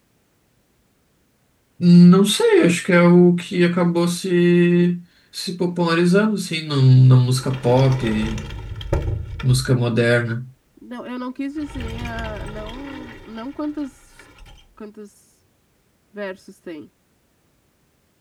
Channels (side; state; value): both; identical; correlation 1.00